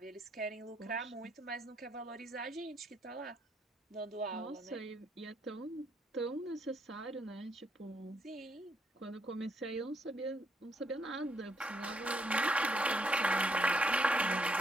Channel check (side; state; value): both; normal; correlation 0.74